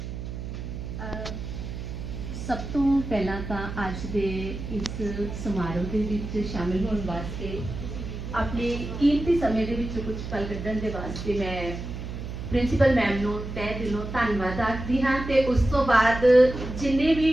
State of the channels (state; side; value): noise; right; hum, 7 dB below the sound